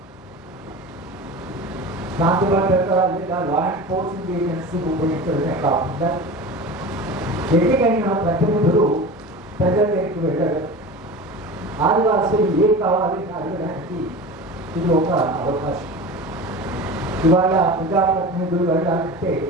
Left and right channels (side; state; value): both; normal; correlation 0.33